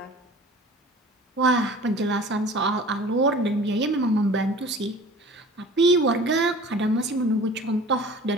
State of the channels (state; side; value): normal; both; correlation 0.43